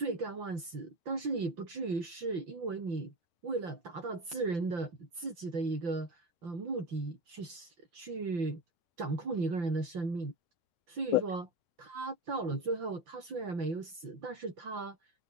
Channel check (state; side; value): late; left; 5.8 ms